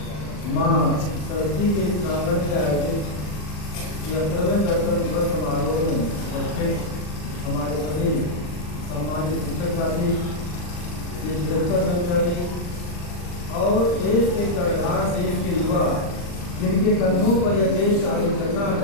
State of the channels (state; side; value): late; right; 40 ms